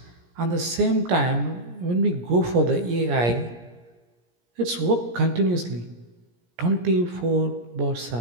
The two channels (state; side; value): late; left; 17 ms